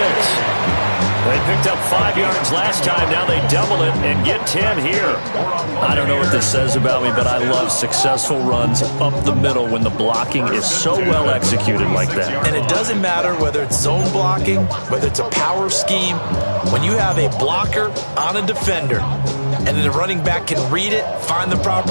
They picked up 5 yards last time. Now they double it and get 10 here. I don't know what this says about me, but I love successful runs up the middle when the blocking is so well executed like that. And it doesn't matter whether it's zone blocking, whether it's a power scheme. When you have a blocker on a defender and then the running back can read it, find the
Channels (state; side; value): inverted; both; correlation -1.00